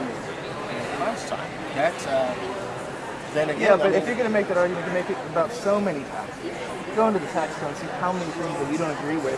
class time. That's then again. Yeah, but if you're going to make that argument, you can make it about so many taxes. Go into the tax code and see how many things that you don't agree with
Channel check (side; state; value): both; identical; correlation 1.00